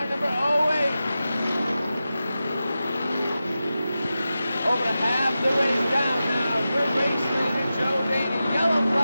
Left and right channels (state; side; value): inverted; both; correlation -0.93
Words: number 08. Over half the race down now for race leader Joe Daney. Yellow